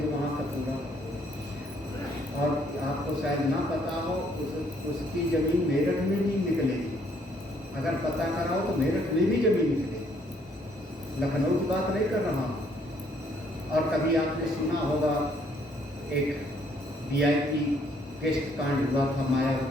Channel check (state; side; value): normal; both; correlation 0.66